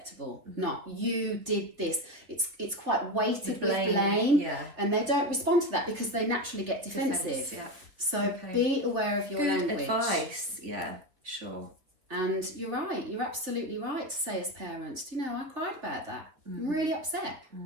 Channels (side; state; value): left; late; 3.7 ms